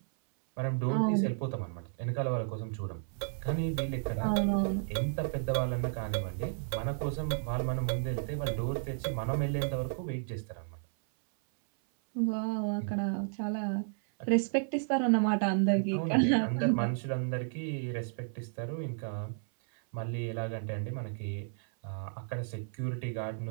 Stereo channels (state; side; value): silent; left; 56 dB below the other